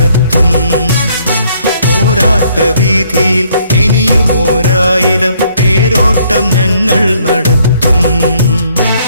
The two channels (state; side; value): inverted; both; correlation -0.65